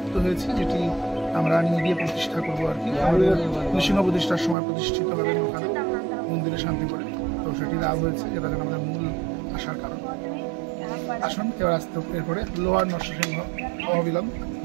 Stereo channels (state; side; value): drops out; left; at 4.5 s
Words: হয়েছে, যেটি আমরা নিয়ে গিয়ে প্রতিষ্ঠা করবো আর কি। আমাদের নৃসিংহ প্রতিষ্ঠার সময় প্রতিষ্ঠিত হবেন ওখানে মন্দিরে শান্তি করে, তো সেটি লাভ হয়েছে, যেটা যেন আমাদের মূল আসার কারণ। আসুন এবার আসতে, এরপরে লোয়ার নরসিংহ অহবিলম